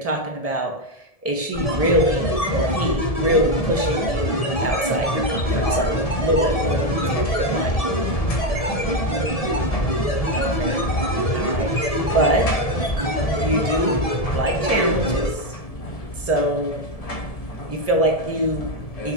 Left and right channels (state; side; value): late; right; 1.7 ms